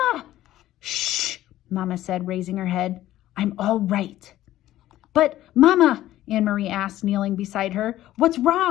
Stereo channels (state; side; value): quieter; right; 14.2 dB